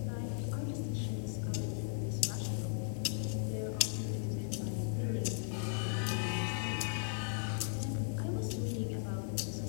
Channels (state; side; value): silent; right; digital silence